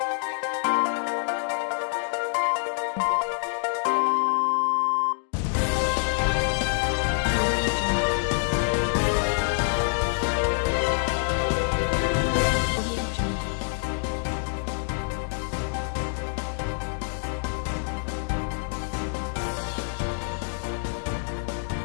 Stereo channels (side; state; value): right; silent; digital silence